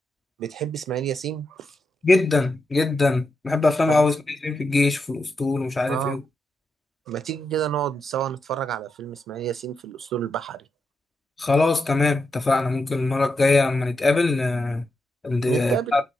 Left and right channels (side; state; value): both; normal; correlation 0.85